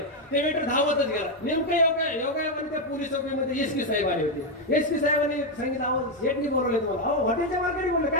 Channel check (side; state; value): both; normal; correlation 0.04